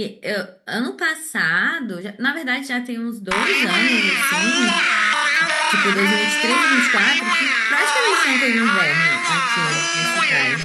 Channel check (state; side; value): identical; both; correlation 1.00